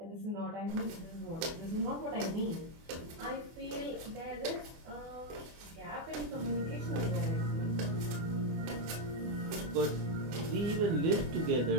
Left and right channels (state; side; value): late; left; 24 ms